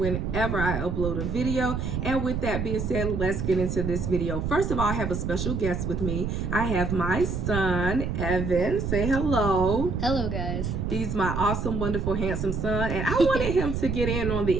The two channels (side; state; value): right; noise; rumble, 2 dB below the sound